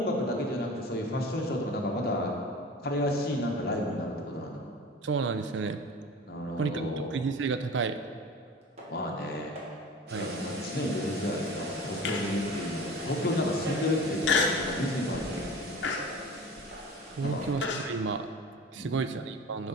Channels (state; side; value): normal; both; correlation 0.38